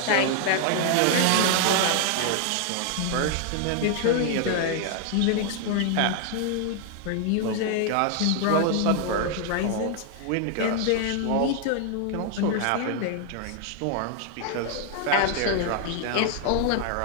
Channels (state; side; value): different; both; correlation 0.00